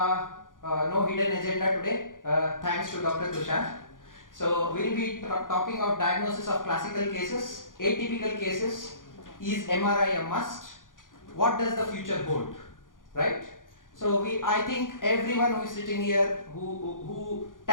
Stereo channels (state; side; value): late; right; 0.89 ms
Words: no hidden agenda today, thanks to Dr. Tushar. So we'll be talking of diagnosis of classical cases, atypical cases. Is MRI a must? What does the future hold? Right? So I think everyone who is sitting here who